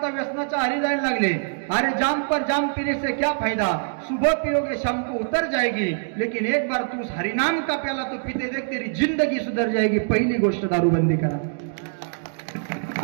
व्यसनाच्या आरी जायला लागले. अरे जाम पर जाम पीने से क्या फायदा, सुबह पियोगे शाम को उतर जाएगी, लेकिन एक बार तू हरिनाम का प्याला तो पीते देख तेरी जिंदगी सुधर जाएगी. पहिली गोष्ट दारूबंदी करा.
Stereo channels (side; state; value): left; silent; digital silence